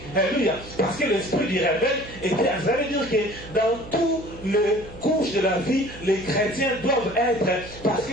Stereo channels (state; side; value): noise; right; hum, 16 dB below the sound